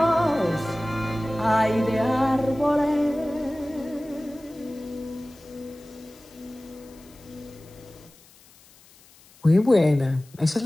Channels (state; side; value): noise; left; hiss, 26 dB below the sound